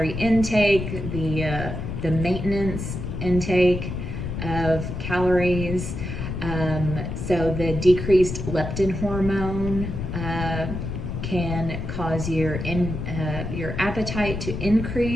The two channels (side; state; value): left; noise; rumble, 5 dB below the sound